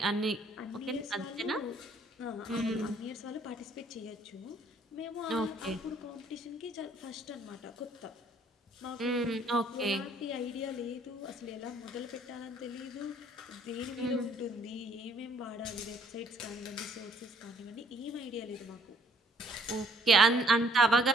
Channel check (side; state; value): both; normal; correlation 0.62